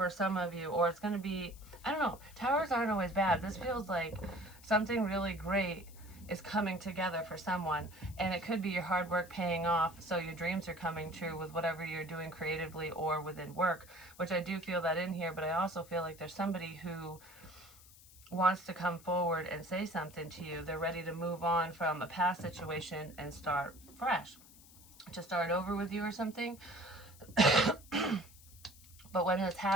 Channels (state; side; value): noise; left; hiss, 22 dB below the sound